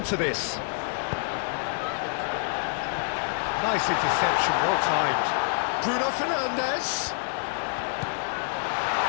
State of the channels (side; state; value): right; silent; digital silence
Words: this? Nice interception, well timed. Bruno Fernandes.